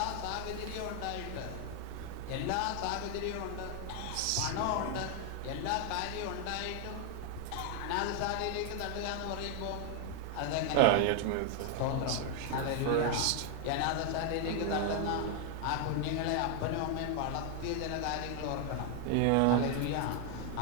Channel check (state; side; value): different; both; correlation 0.00